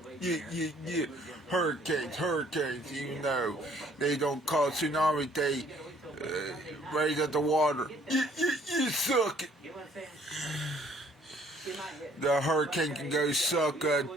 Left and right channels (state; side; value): normal; both; correlation 0.60